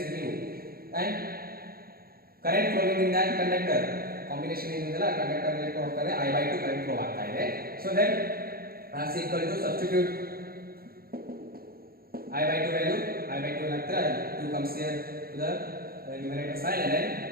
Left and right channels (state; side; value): late; left; 0.44 ms